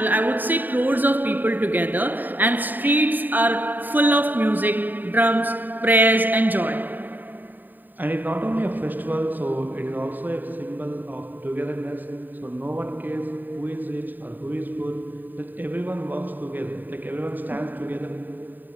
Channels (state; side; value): late; left; 0.089 ms